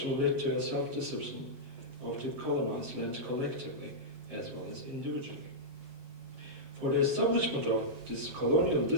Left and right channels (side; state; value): left; late; 7.5 ms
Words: led to a self-discipline of the colonized land collectively as well as individually. For the establishment of this colonial